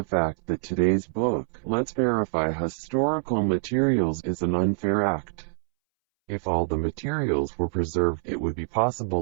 fact that today's book, Let's Verify Historical Materials, is an unfair act. If all the materials were preserved, it would be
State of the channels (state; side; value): silent; left; 61 dB below the other